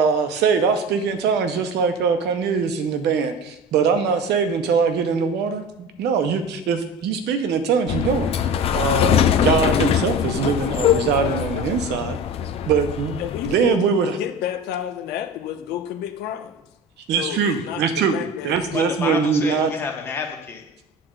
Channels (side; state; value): both; normal; correlation 0.33